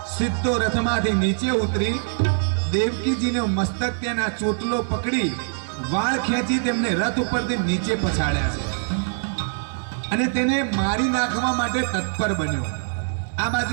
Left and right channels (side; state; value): left; silent; 62 dB below the other